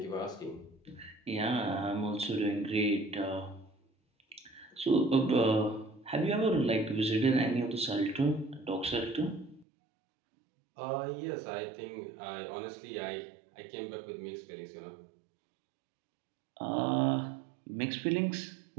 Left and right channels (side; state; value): left; drops out; at 9.7 s